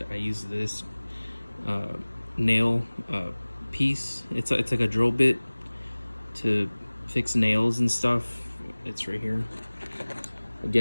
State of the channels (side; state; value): both; inverted; correlation -1.00